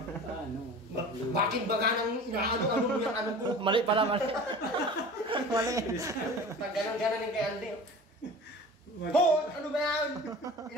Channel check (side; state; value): both; normal; correlation 0.39